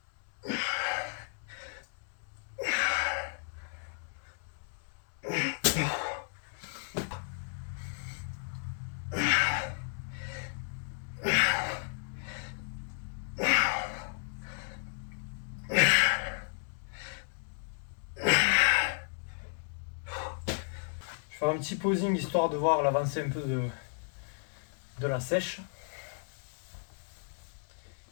Je vais faire un petit posing histoire de voir l'avancée un peu de la sèche,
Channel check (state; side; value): silent; right; digital silence